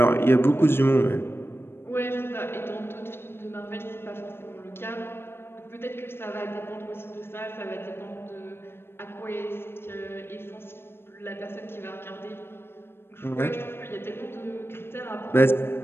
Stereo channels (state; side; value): late; right; 0.11 ms